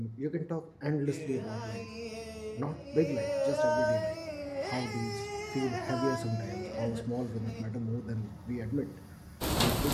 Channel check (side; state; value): both; identical; correlation 1.00